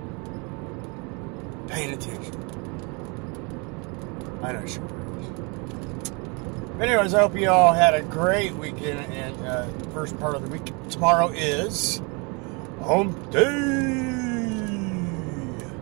paying attention. I know she is. But anyways, I hope you all had a great weekend and first part of the week. Tomorrow is Hump Day.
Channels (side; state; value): left; quieter; 31.1 dB